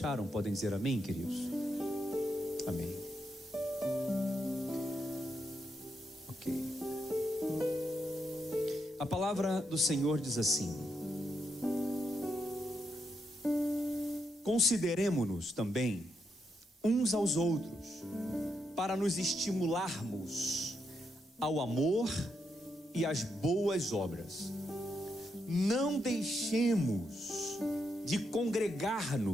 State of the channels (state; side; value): normal; both; correlation 0.81